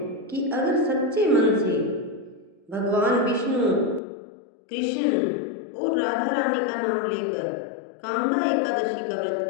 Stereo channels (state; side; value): drops out; right; at 4.0 s